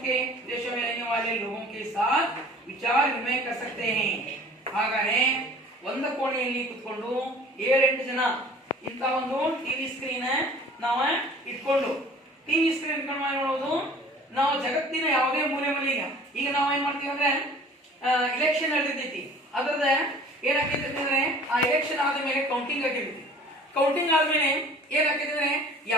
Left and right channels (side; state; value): both; normal; correlation 0.48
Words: में रहने वाले लोगों के साथ विचार विनिमय कर सकते हैं. ಹಾಗಾದ್ರೆ ಒಂದು ಕೋಣೆಯಲ್ಲಿ ಕೂತ್ಕೊಂಡು 7-8 ಜನ ಇಂತ ಒಂದು ಟಿವಿ ಸ್ಕ್ರೀನ್ ನಾವು ಇಟ್ಕೊಂಡು ಟಿವಿ ಸ್ಕ್ರೀನ್ ಇಟ್ಕೊಂಡು ಮಾಡೋದು, ನಾವು ಜಗತ್ತಿನ ಯಾವುದೇ ಮೂಲೆ ಮೂಲೆಗೆ ಈಗ ನಾವು ಏನ್ ಮಾಡ್ತೀವಿ ಅಂದ್ರೆ ಇಲೆಕ್ಷನ್ ನಡೆದಿರ್ತೈತಿ, ಅದ್ರದ ಏನಾಗ್ತೈತಿ ಅಂದ್ರೆ ಆ ಇಲೆಕ್ಷನ್ ಆದ ಮೇಲೆ ಕೌಂಟಿಂಗ್ ಆಗಿರ್ತೈತಿ. ಕೌಂಟಿಂಗ್ ಆದ್ಮೇಲೆ ಏನಾಗ್ತೈತಿ ಅಂದ್ರೆ